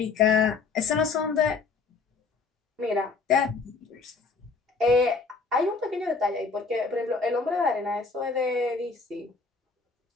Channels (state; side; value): quieter; right; 4.5 dB